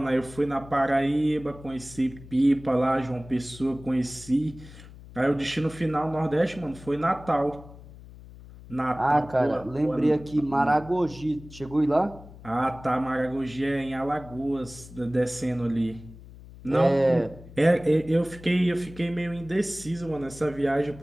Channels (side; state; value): left; noise; hum, 18 dB below the sound